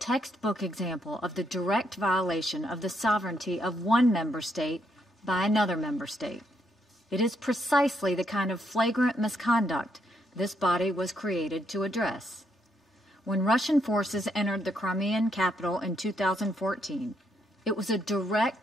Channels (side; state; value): both; normal; correlation 0.76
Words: example of the direct violation of the sovereignty of one member state by another member state. It is precisely the kind of flagrant misconduct this body was created to address. When Russian forces entered the Crimean capital in 2014, it was a